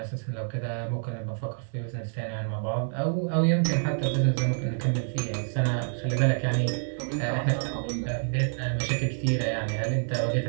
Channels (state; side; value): silent; left; digital silence